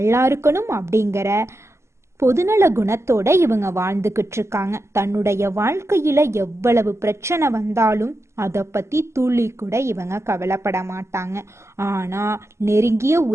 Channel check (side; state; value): left; late; 0.13 ms